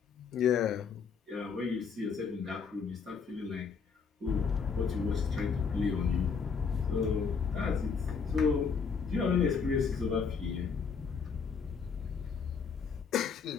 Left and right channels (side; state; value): right; quieter; 5.8 dB